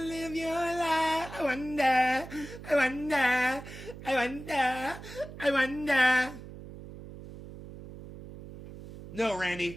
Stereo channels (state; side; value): noise; right; hum, 14 dB below the sound